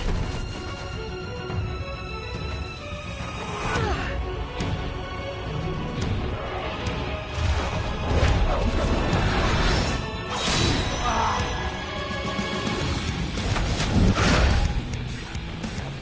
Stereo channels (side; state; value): both; identical; correlation 1.00